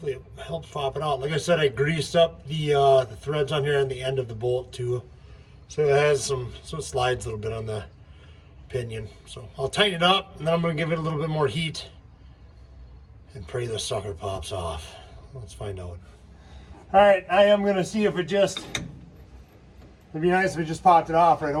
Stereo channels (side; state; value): both; identical; correlation 1.00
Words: it helps pop it out. Like I said, I greased up the threads on here and the end of the bolt too. So it has so it slides a little bit on the pinion. So I'll tighten it up and then I'm gonna give it a little bit more heat and pray this sucker pops off. Let's find out. All right, I am gonna see if it'd be nice if it just popped it off right